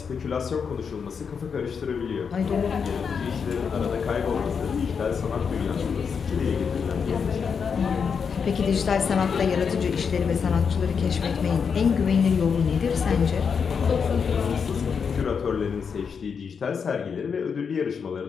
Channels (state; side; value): quieter; right; 6.3 dB